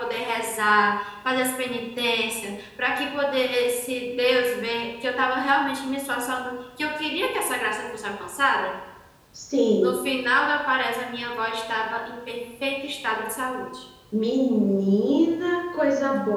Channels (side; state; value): both; identical; correlation 1.00